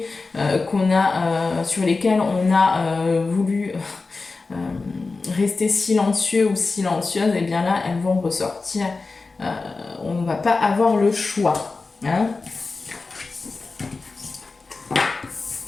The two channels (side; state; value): right; quieter; 3.9 dB